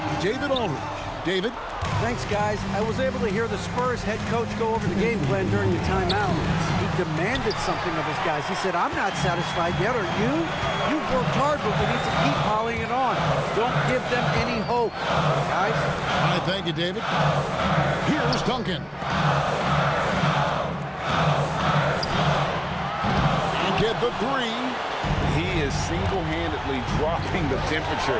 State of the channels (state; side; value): identical; both; correlation 1.00